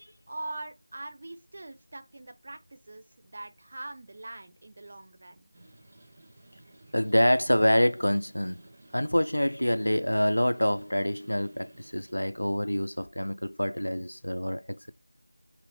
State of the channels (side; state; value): both; inverted; correlation -1.00